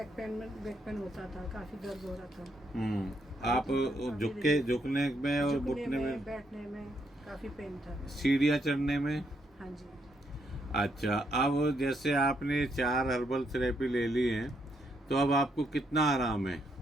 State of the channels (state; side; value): normal; both; correlation 0.76